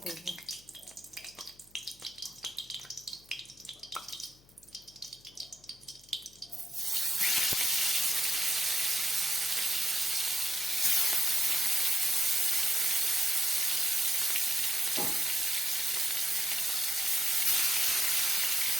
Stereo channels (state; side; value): noise; left; hum, 28 dB below the sound